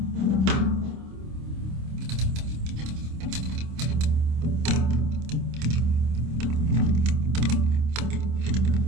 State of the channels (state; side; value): late; left; 26 ms